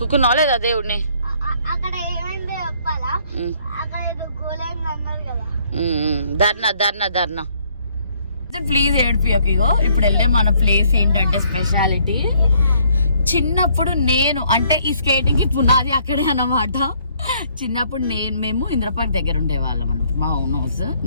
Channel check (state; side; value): inverted; both; correlation -0.65